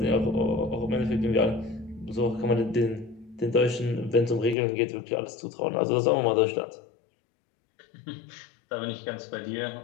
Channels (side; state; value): right; drops out; at 4.5 s